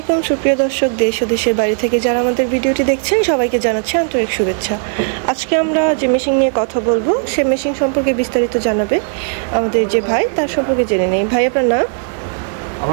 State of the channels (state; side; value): silent; left; digital silence